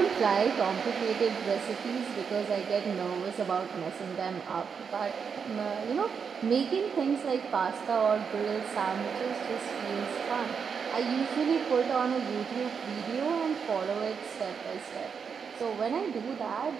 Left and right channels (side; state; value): left; quieter; 6.4 dB